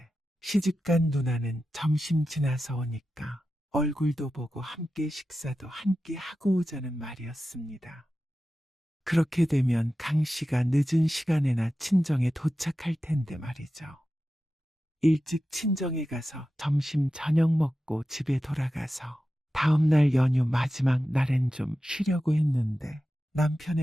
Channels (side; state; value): both; normal; correlation 0.92